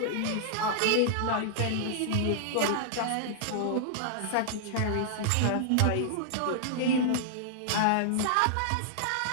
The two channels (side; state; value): both; different; correlation -0.01